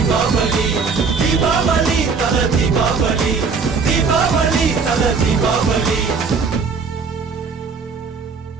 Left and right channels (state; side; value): quieter; left; 5.1 dB